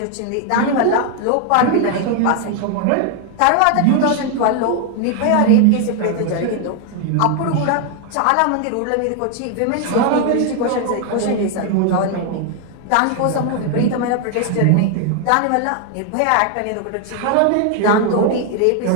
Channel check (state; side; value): different; both; correlation 0.00